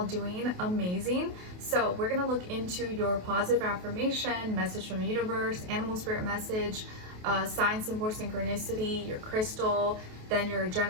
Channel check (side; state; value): left; late; 28 ms